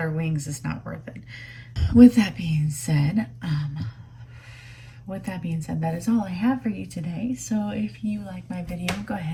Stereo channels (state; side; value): identical; both; correlation 1.00